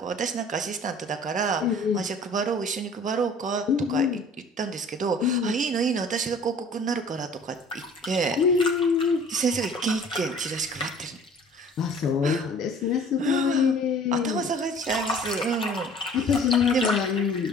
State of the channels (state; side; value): normal; both; correlation 0.49